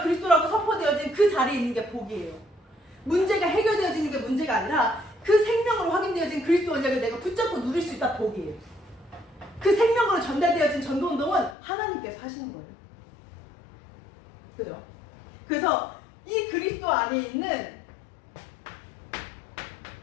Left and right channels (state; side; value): drops out; right; at 11.6 s